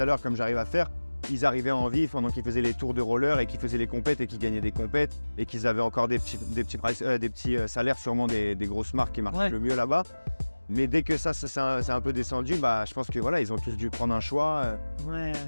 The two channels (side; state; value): both; inverted; correlation -1.00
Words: à l'heure, comme j'arrive à faire, ils arrivaient en vif pendant qu'ils faisaient les tours de roller et qu'ils faisaient les compètes et qu'ils gagnaient des compètes et qu'ils avaient encore des petits salaires, sûrement des grosses marques qui marchent Ouais. le mieux là-bas. Mais dès que ça c'est un peu descendu, bah, je pense que voilà, ils ont tous dû prendre un choix, Ouais.